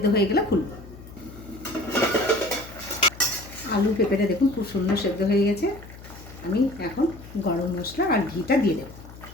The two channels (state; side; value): noise; left; hum, 17 dB below the sound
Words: হয়ে গেলে খুলবো। আলু পেঁপেটা দেখুন খুব সুন্দর সেদ্ধ হয়ে গেছে। আমি এখন গরম মশলা আর ঘিটা দিয়ে দেবো।